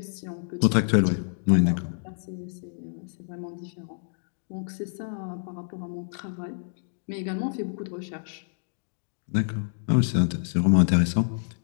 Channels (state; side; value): silent; right; digital silence